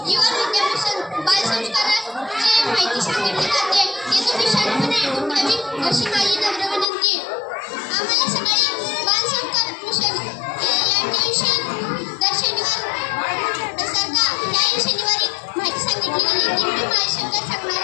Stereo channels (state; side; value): drops out; right; at 6.9 s